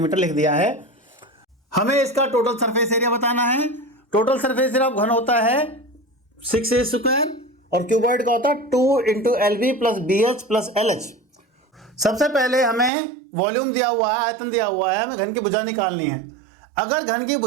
लिख दिया है। हमें इसका टोटल सरफेस एरिया बताना है। टोटल सरफेस एरिया घन होता है 6a स्क्वायर और क्यूबॉइड का होता है 2 × LB + BH + LH। सबसे पहले हमें वॉल्यूम दिया हुआ है, आयतन दिया हुआ है, हमें घन की भुजा निकालनी है। अगर घन की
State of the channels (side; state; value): left; drops out; at 12.9 s